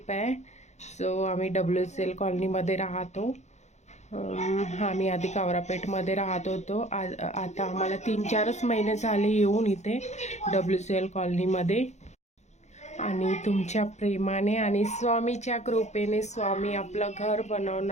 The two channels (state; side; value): late; right; 0.33 ms